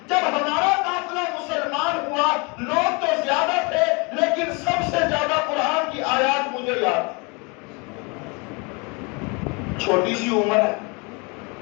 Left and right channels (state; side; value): quieter; right; 30.4 dB